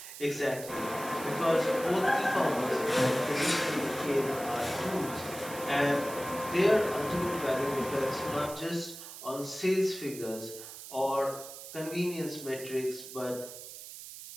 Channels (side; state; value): right; noise; hiss, 13 dB below the sound